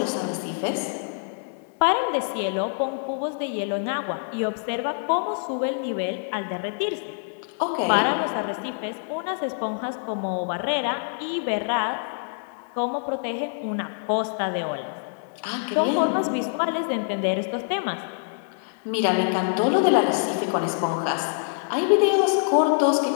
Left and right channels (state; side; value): silent; right; digital silence